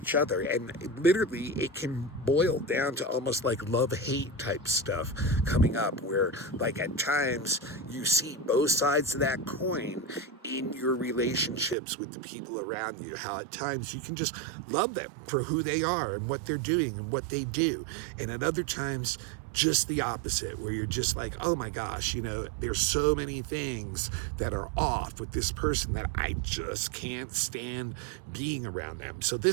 other, and literally it can boil down to almost like love-hate type stuff coming up, where like at times you see both sides of that coin in your relationships with the people around you, how at times you can just love them for who they are and what they're doing and what they do, and at other times just the opposite, where you're just like, oh my gosh, there's so many things that are off with this person that I just can't stand being around them. So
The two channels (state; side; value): drops out; left; at 11.8 s